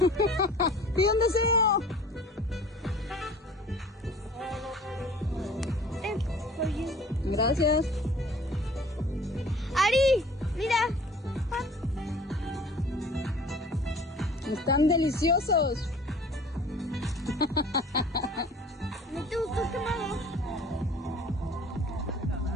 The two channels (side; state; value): both; normal; correlation 0.48